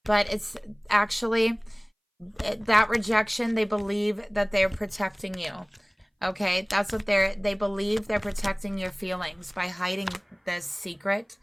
But it's actually that rejection, they believe that they're protecting you. Okay, that's what they believe they're protecting your feelings by hiding this secret,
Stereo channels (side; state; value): both; identical; correlation 1.00